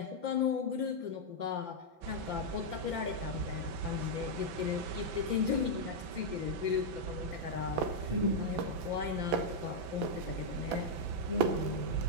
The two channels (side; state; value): left; late; 6.0 ms